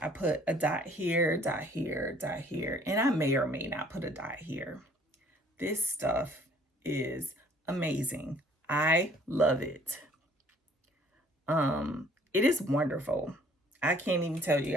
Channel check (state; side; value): normal; both; correlation 0.58